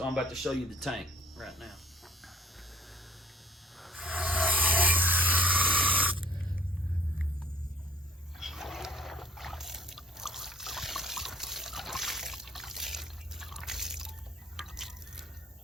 I'm about to show you the tank right now.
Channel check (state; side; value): normal; both; correlation 0.54